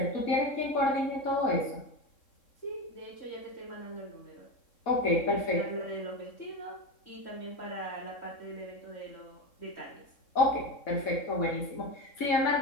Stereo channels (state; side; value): late; right; 3.7 ms